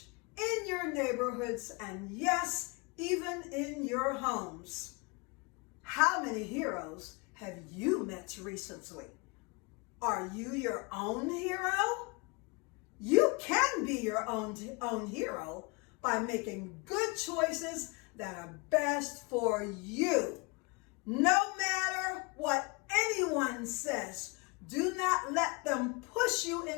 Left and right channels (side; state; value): right; quieter; 28.1 dB